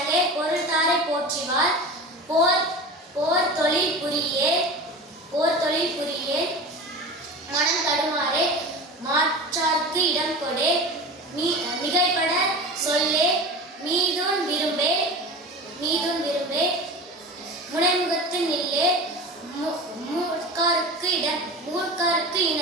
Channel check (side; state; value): both; normal; correlation 0.32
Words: பொருள் தாரை போற்றிவார், போர் தொழில் புரியே, மனம் தடுமாறே, மாற்றார்க்கு இடம் கொடே, மிகைப்பட சொல்லே, மீதுன் விரும்பே, முனைமுகத்து நில்லே, மூர்க்காருக்கு